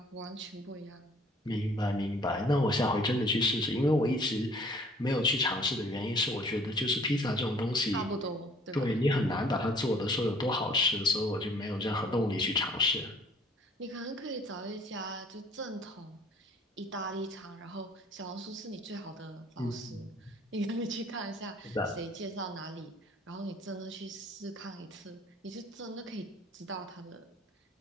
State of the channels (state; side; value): normal; both; correlation 0.55